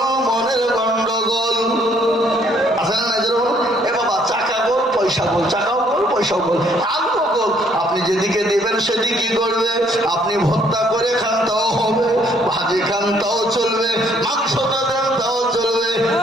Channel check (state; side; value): normal; both; correlation 0.65